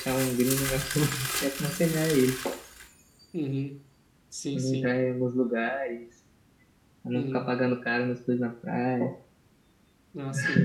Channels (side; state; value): both; identical; correlation 1.00